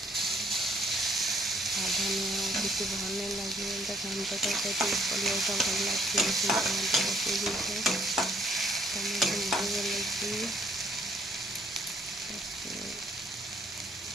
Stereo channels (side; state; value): both; normal; correlation 0.65